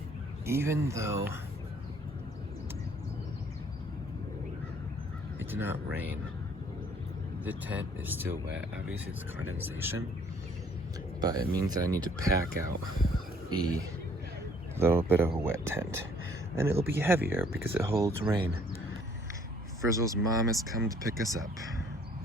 Even though it did not rain, the tent is still wet. Obviously it's condensation, but it means that I need to pack out a little bit of a wet tent. And it'll be heavier because it holds rain. Frizzle's mom has come to pick us up.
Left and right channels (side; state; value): both; normal; correlation 0.60